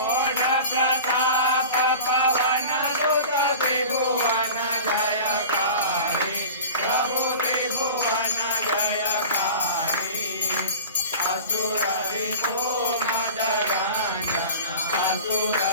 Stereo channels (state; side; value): inverted; both; correlation -0.36